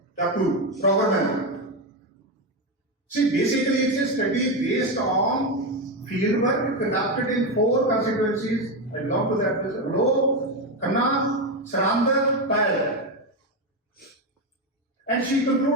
Roverman. See, basically it's a study based on fieldwork conducted in 4 constituencies. I belong to that. Low, Kanna, Sarandar, Payal. And she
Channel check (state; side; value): normal; both; correlation 0.11